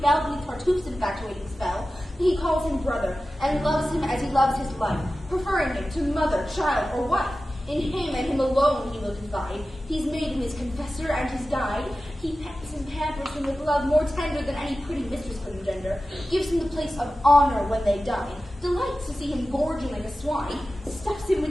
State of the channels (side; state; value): both; normal; correlation 0.94